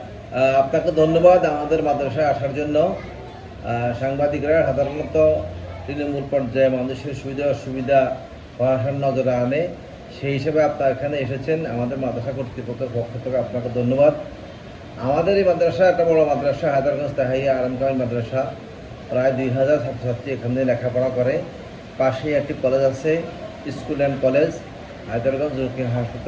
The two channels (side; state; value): both; identical; correlation 1.00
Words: আপনাকে ধন্যবাদ আমাদের মাদ্রাসায় আসার জন্য। সাংবাদিকরা সাধারণত তৃণমূল পর্যায়ে মানুষের সুবিধা অসুবিধা প্রশাসন নজরে আনে, সেই হিসেবে আপনারা এখানে এসেছেন। আমাদের মাদ্রাসা কর্তৃপক্ষের পক্ষ থেকে আপনাকে ধন্যবাদ। আমাদের এই মাদ্রাসা একটা বড় মাদ্রাসা, হায়দারগঞ্জ তাহিয়া আলম কামিল মাদ্রাসা। প্রায় 2000 ছাত্রছাত্রী এখানে লেখাপড়া করে। পাশেই একটি কলেজ আছে, স্কুল অ্যান্ড কলেজ। হায়দারগঞ্জ জকির